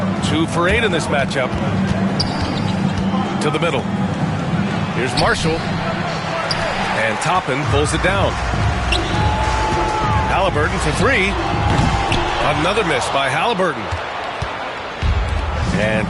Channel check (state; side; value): identical; both; correlation 1.00